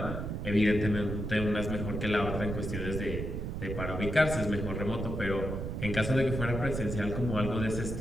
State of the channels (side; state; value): right; noise; rumble, 4 dB below the sound